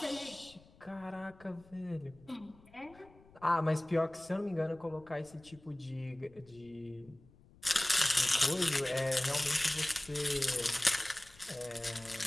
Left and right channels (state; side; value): noise; left; rumble, 25 dB below the sound